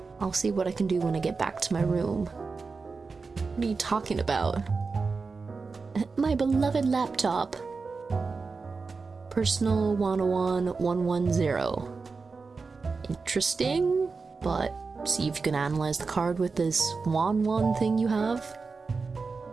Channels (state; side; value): quieter; left; 4.5 dB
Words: I'll see what I can do when I get back to my room. What are you talking about? My beloved laptop. Personal 101 110. Interesting, but see if you can analyze the card with this 1 thing you have.